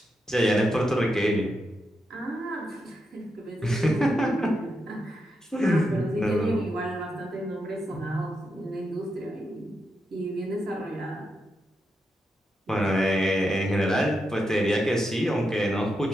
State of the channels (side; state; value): both; normal; correlation 0.85